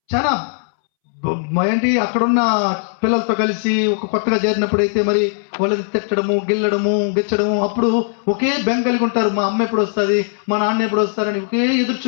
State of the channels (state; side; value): silent; right; 67 dB below the other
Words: చాలా ఏంటి, అక్కడున్న పిల్లలతో కలిసి ఒక కొత్తగా చేరినప్పుడు అయితే మరి వాళ్ళని తిట్టడము, గిచ్చడము, అప్పుడు ఒకే బెంగ కలిగి ఉంటారు. మా అమ్మ ఎప్పుడు వస్తుంది, మా నాన్న ఎప్పుడు వస్తారని ఒకే ఎదురు